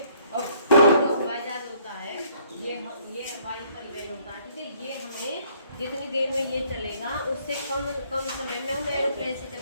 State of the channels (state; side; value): inverted; both; correlation -0.63